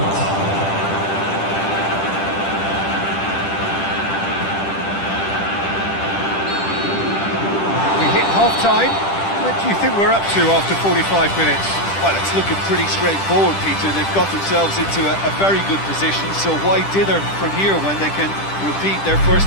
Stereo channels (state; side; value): late; right; 10 ms